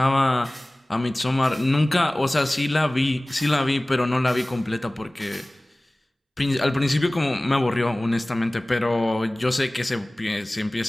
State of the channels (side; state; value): both; normal; correlation 0.98